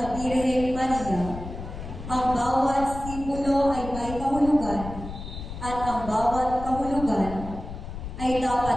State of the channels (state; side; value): noise; left; rumble, 10 dB below the sound